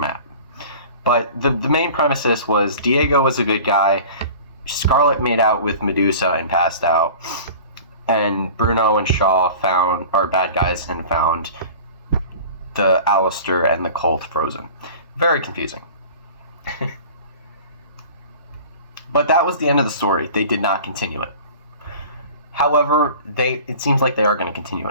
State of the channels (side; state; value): both; inverted; correlation -0.41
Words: But the main premises was Diego was a good guy, Scarlet made out with Medusa and passed out, and Bruno and Shaw are bad guys and found the Alistair and the cult frozen. Very confusing. But that was the end of the story. They did not continue it. However, it seems like they are going to continue